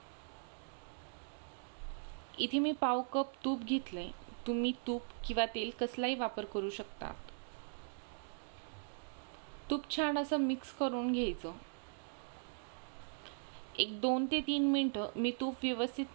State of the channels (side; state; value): left; silent; digital silence